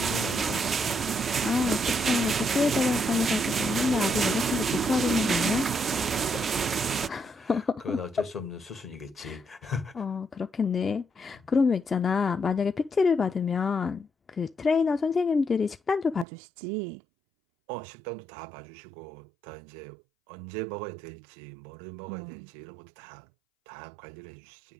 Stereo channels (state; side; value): drops out; left; at 16.2 s